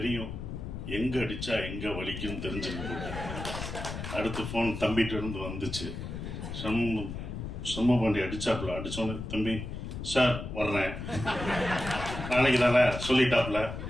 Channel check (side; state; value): left; noise; rumble, 7 dB below the sound